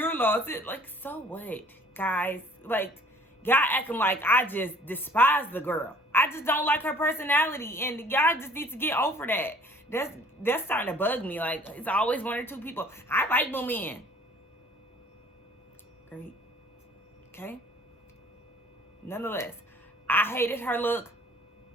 loss. Like, so what, guys? Like, y'all acting like I just despise the girl. I just don't like her personality, and y'all just need to get over that. That's starting to bug me. Like, it's always one or two people. I like Moomin. Great. Okay. Nonetheless, I hated her look.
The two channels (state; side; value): normal; both; correlation 0.53